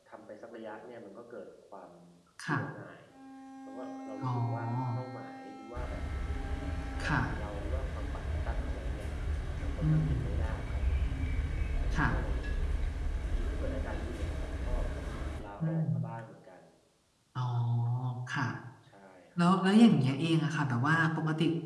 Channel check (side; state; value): both; identical; correlation 1.00